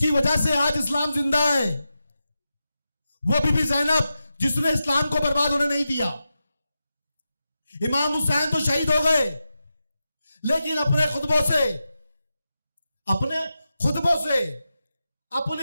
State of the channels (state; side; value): inverted; both; correlation -0.90